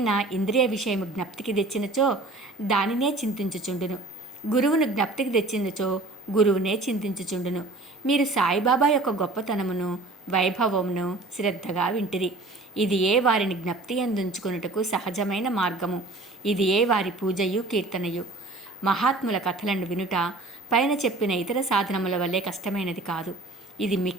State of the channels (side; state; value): left; quieter; 3.1 dB